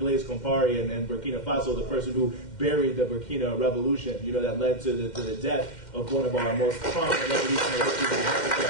Blaise Compaoré and Burkina Faso, the person who buried the Burkina Revolution, that led to the death of one of our most prominent revolutionary leaders in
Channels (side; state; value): right; late; 2.1 ms